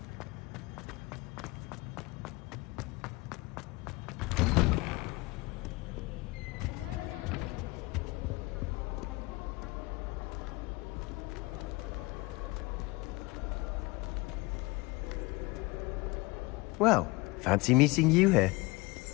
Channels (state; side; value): quieter; right; 23.6 dB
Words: A girl in our dormitory keeps getting passive with homemade packets from her family. Well, fancy meeting you here.